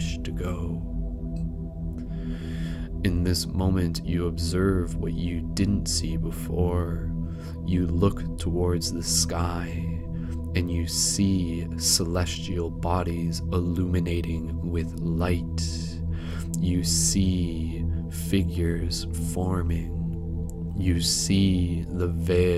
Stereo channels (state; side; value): identical; both; correlation 1.00